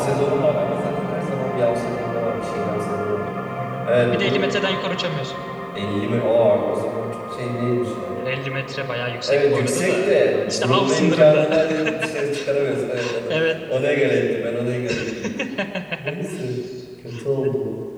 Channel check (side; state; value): both; identical; correlation 1.00